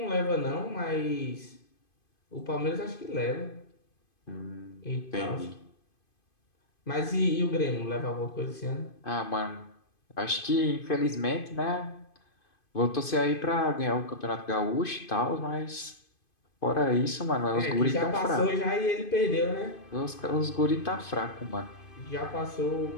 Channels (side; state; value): right; late; 2.5 ms